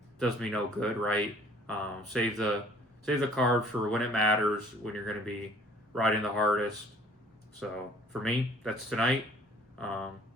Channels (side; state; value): both; normal; correlation 0.55